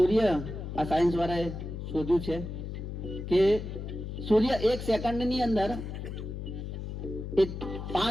આ સાયન્સ વાળાએ શોધ્યું છે કે સૂર્ય 1 સેકન્ડની અંદર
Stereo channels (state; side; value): noise; left; hum, 7 dB below the sound